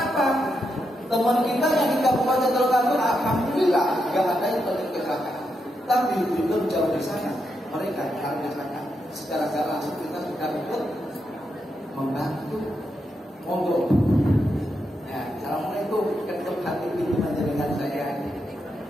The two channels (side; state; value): both; normal; correlation 0.83